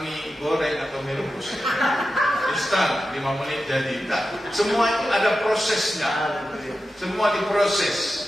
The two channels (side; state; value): both; normal; correlation 0.92